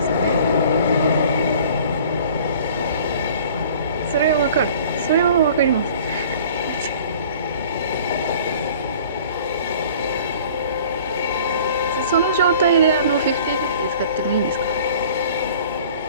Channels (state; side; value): inverted; both; correlation -0.49